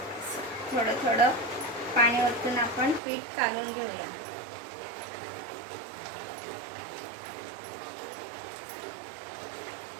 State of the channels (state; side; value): drops out; left; at 3.0 s